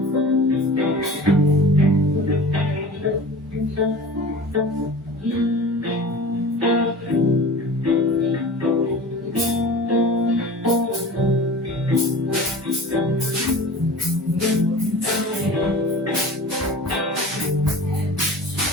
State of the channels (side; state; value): both; normal; correlation 0.38